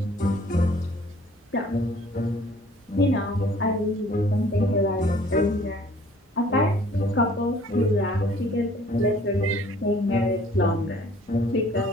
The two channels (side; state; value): both; normal; correlation 0.55